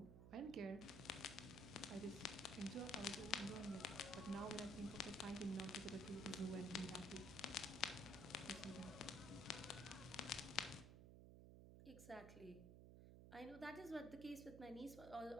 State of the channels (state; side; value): noise; right; hum, 11 dB below the sound